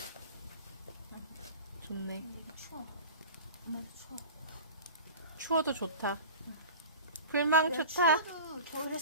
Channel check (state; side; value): inverted; both; correlation -0.37